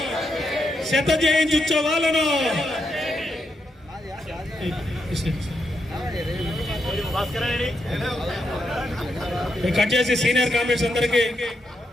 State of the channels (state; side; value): normal; both; correlation 0.82